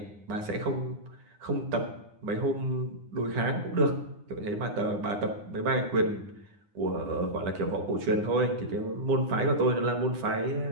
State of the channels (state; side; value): late; left; 9.8 ms